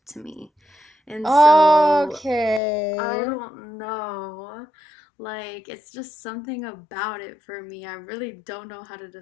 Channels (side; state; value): right; drops out; at 2.6 s